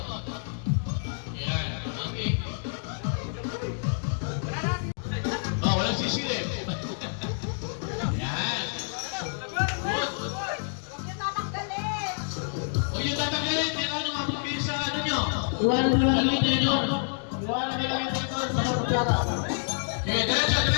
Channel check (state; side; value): silent; right; digital silence